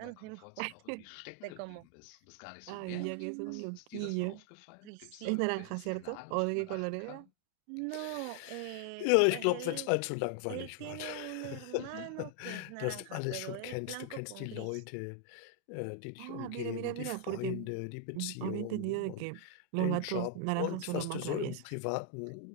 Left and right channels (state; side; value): different; both; correlation 0.00